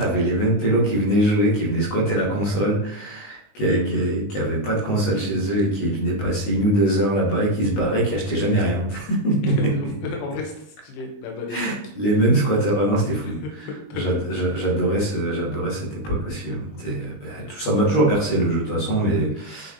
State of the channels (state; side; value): late; right; 19 ms